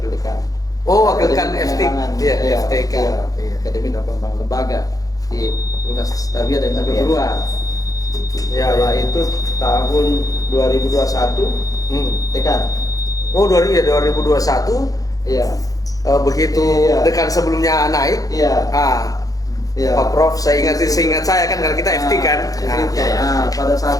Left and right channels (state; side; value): late; right; 0.17 ms